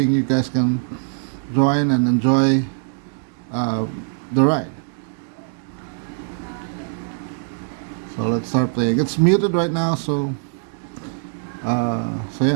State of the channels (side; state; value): left; silent; digital silence